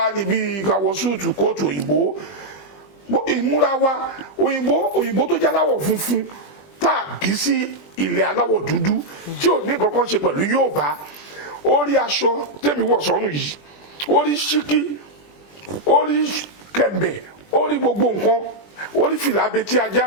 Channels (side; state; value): right; late; 20 ms